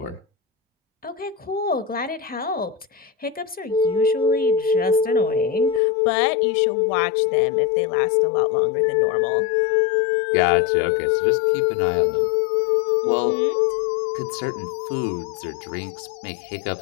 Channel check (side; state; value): right; drops out; at 5.8 s